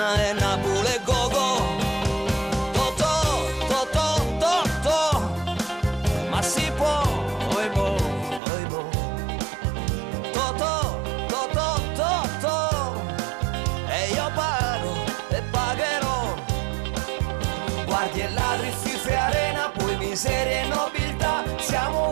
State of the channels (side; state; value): left; drops out; at 8.4 s